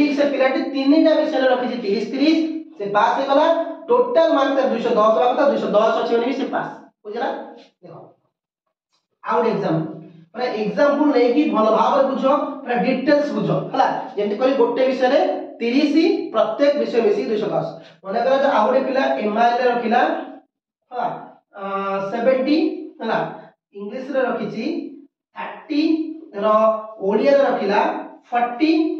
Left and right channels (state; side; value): identical; both; correlation 1.00